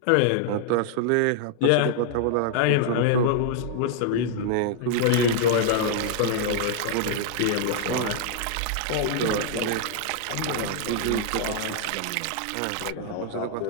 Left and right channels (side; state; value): both; different; correlation -0.01